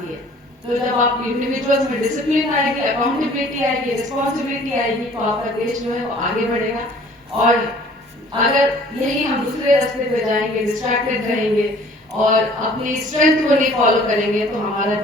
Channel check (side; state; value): both; normal; correlation 0.53